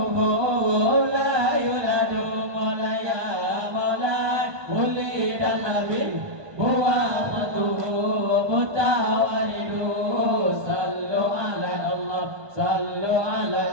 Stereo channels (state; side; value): late; left; 1.5 ms